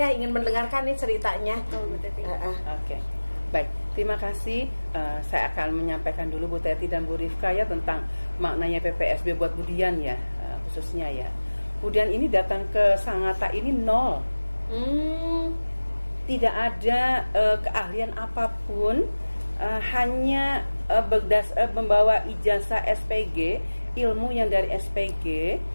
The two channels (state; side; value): inverted; both; correlation -1.00